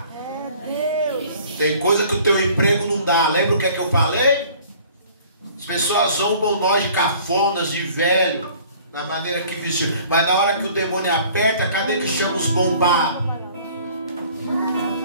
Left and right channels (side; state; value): both; inverted; correlation -0.52